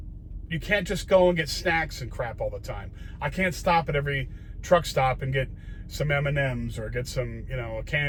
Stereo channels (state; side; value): identical; both; correlation 1.00